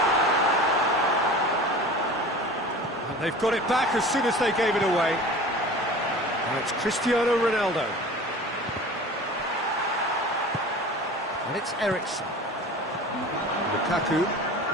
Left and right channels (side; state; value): both; normal; correlation 0.39